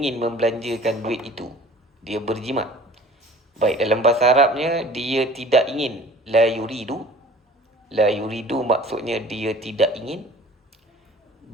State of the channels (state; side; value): normal; both; correlation 0.47